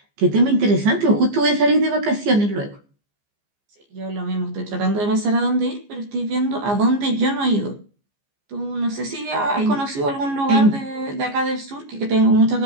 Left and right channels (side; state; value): left; late; 15 ms